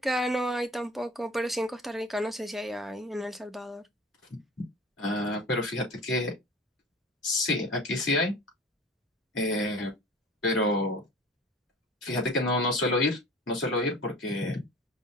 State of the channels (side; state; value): both; normal; correlation 0.40